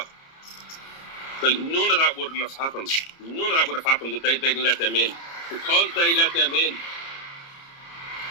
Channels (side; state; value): right; late; 30 ms